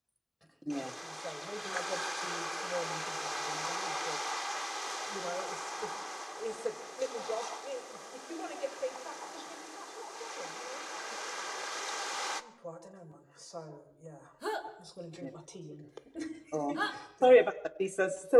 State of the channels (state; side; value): identical; both; correlation 1.00